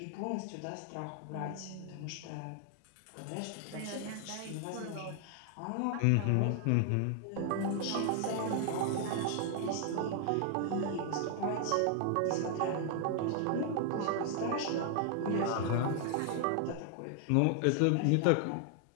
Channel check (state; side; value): different; both; correlation 0.00